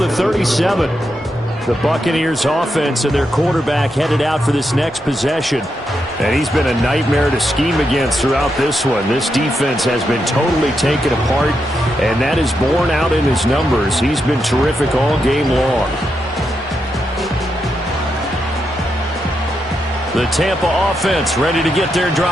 37. The Buccaneers offense and their quarterback headed out for this next possession. And he's been a nightmare to scheme against throughout this one. This defense has been totally taken apart, and that is borne out in his numbers. He's been terrific all game long. The Tampa offense ready to get their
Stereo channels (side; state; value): both; normal; correlation 0.84